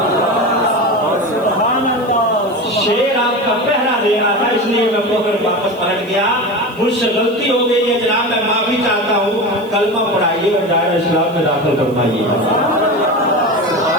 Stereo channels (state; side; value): noise; right; hiss, 27 dB below the sound